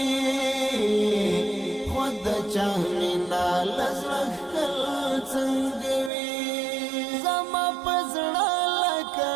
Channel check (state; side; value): drops out; left; at 6.1 s